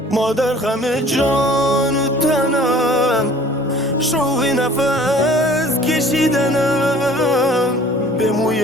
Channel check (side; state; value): both; normal; correlation 0.50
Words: مادر غم جان و تنم، شوق نفس کشیدنم، به